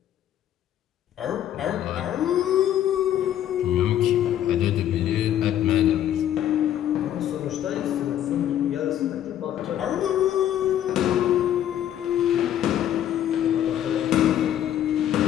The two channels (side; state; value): right; quieter; 11.2 dB